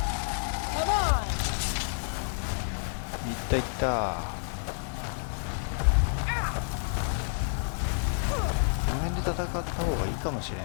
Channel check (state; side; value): silent; right; digital silence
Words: いった。この辺で戦った方がいいかもしれん